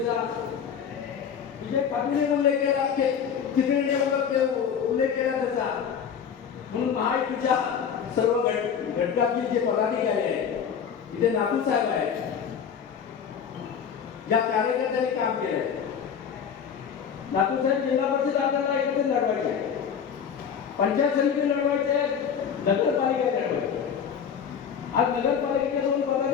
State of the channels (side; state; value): right; quieter; 7.5 dB